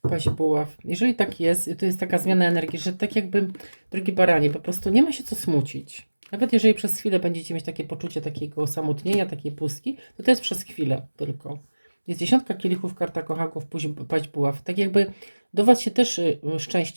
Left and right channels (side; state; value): both; inverted; correlation -1.00